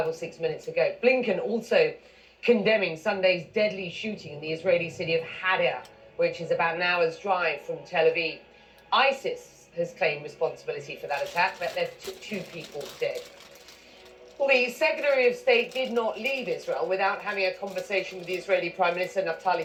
or 6 minutes ago. Blinken also condemning Sunday's deadly shooting in the Israeli city of Hadar, which is about an hour's drive from Tel Aviv. ISIS has claimed responsibility for that attack, but left 2 people dead. Well, the Secretary of State did not leave Israel without having a conversation with the Israeli Prime Minister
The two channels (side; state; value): both; identical; correlation 1.00